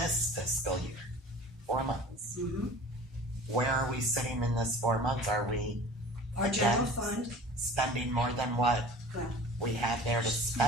fiscal year, 4 months. Mm-hmm. Where are we sitting in this 4 months? Are we Our general Yes. fund, spending more than what well, we had there to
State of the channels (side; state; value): both; normal; correlation 0.42